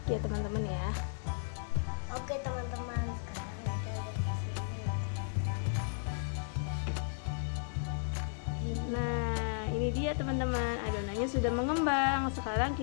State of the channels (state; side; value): silent; right; 55 dB below the other